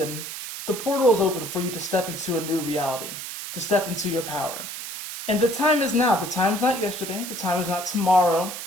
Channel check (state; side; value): noise; right; hiss, 8 dB below the sound